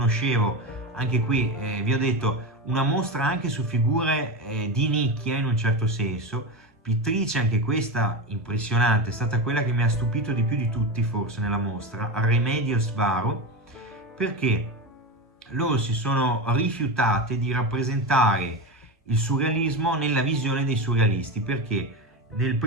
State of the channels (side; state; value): both; normal; correlation 0.20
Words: anche qui vi ho detto, una mostra anche su figure di nicchia in un certo senso, pittrice anche questa impressionante, è stata quella che mi ha stupito di più di tutti forse nella mostra, Remedios Varo, perché loro si sono rifiutate di rappresentare il surrealismo nella visione dei surrealisti, perché nel